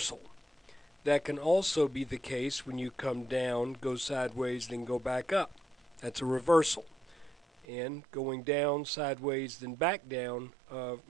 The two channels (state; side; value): drops out; left; at 7.7 s